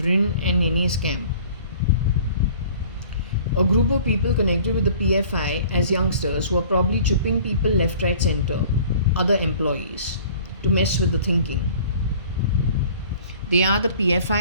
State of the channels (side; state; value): both; inverted; correlation -0.50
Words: and Nene's camp. A group of people connected with the PFI as youngsters who are probably chipping people left, right, center, other employees, to mess with the thinking. They are the